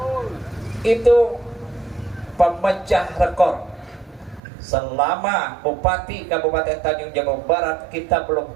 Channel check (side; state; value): left; drops out; at 4.4 s